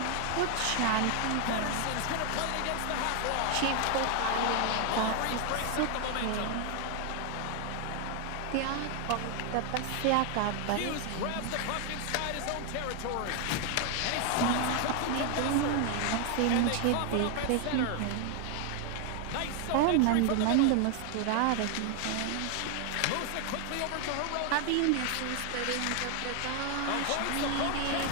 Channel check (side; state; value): both; different; correlation 0.00